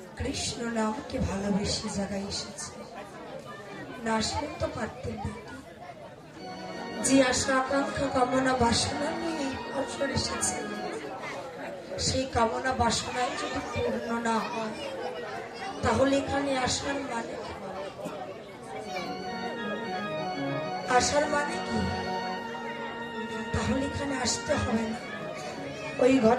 কৃষ্ণ নামকে ভালোবেসে জায়গায় এসেছে না আসলে তো পারতেন না যে আশা আকাঙ্ক্ষা কামনা বাসনা নিয়ে এই বছর এসেছে সেই কামনা বাসনায় যদি পূর্ণ না হয় তাহলে এখানে আসার মানে কি? আসার মানে কি? তাহলে এখানে আসতে হবে না। ওই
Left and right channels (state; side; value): identical; both; correlation 1.00